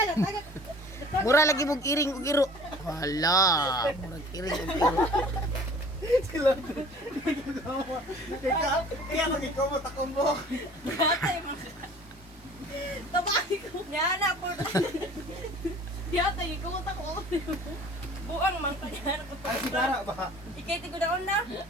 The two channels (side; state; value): both; normal; correlation 0.48